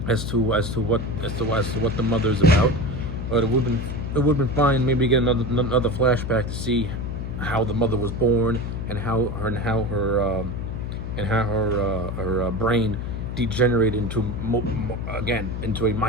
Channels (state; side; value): noise; left; hum, 5 dB below the sound